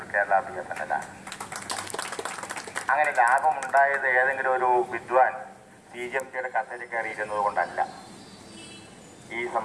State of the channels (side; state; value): both; identical; correlation 1.00